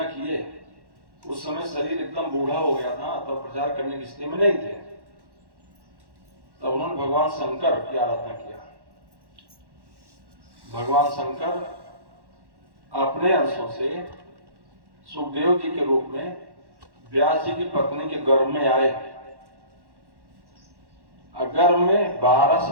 किए उस समय शरीर एकदम बूढ़ा हो गया था, तो प्रचार करने की स्थिति में नहीं थे। तब उन्होंने भगवान शंकर की आराधना किया। भगवान शंकर अपने अंशों से सुखदेव जी के रूप में व्यास जी की पत्नी के गर्भ में आए। गर्भ में 12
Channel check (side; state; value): left; late; 1.1 ms